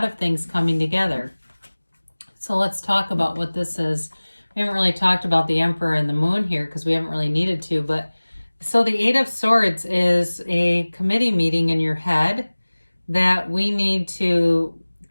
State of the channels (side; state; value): both; inverted; correlation -1.00